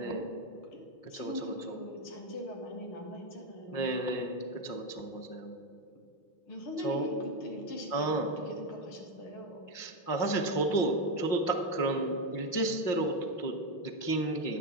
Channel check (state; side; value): late; right; 5.7 ms